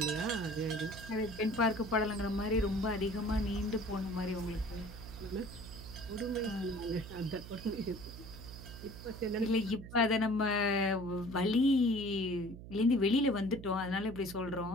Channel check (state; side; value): noise; right; hum, 13 dB below the sound